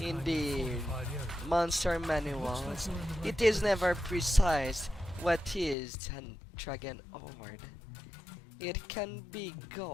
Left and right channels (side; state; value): right; drops out; at 5.8 s